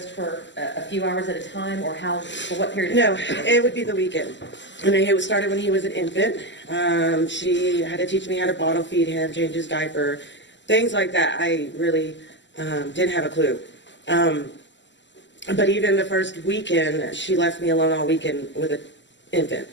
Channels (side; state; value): right; late; 0.53 ms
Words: for a few hours at a time, or for what period of No, time? it would be the weekend. And it started when he was an infant. She had to teach me how to bottle feed him, change his diaper, things like that. I really didn't have a clue. But even the first weekend, she left me alone all weekend with an infant.